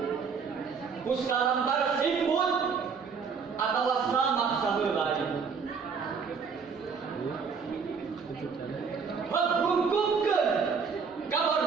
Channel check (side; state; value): left; quieter; 5.7 dB